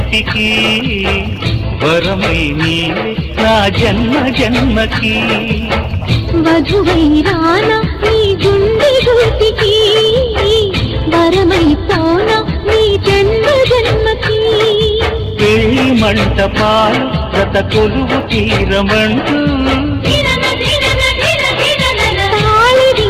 వరమై నీవే నా జన్మ జన్మకి. వధువై రానా నీ గుండె గూటికి, వరమై పోనా నీ జన్మ జన్మకి. పెళ్లి మంటపాలు గత కొలువు తీరమంటూ, తాళి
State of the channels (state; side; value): identical; both; correlation 1.00